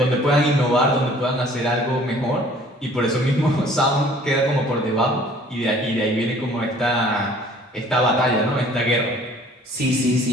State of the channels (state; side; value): normal; both; correlation 0.53